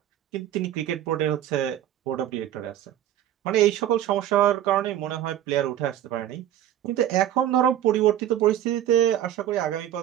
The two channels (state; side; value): quieter; left; 11.6 dB